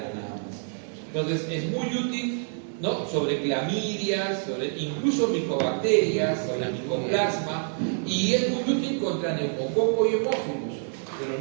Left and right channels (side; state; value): left; silent; digital silence